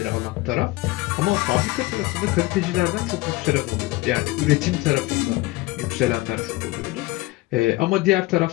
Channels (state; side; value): quieter; right; 19.8 dB